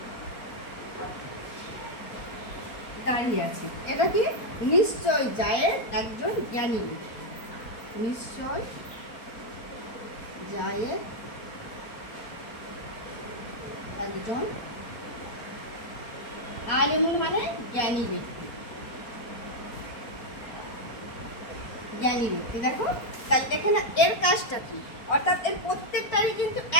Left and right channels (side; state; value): right; late; 4.2 ms